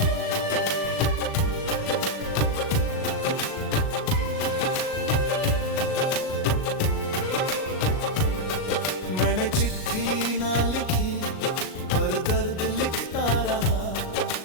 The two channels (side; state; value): right; late; 38 ms